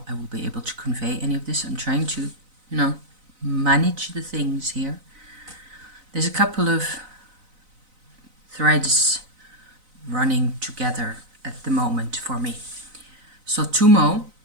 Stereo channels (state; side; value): late; left; 4.0 ms